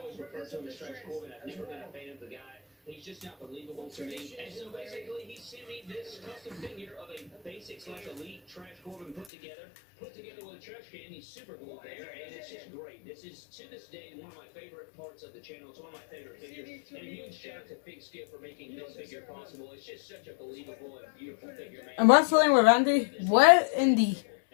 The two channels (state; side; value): drops out; right; at 9.2 s